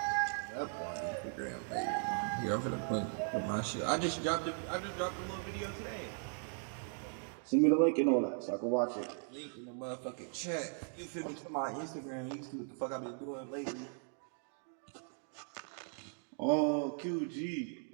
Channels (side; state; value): left; silent; 52 dB below the other